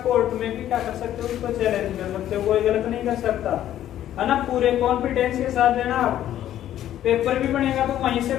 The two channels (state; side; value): quieter; right; 11.9 dB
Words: कोर्ट में भी क्या कर सकते हो, उसको चैलेंज कर सकते हो, कोई गलत नहीं कर सकता, है ना। पूरे कॉन्फिडेंस के साथ देना। आप पेपर भी बनेगा तो वहीं से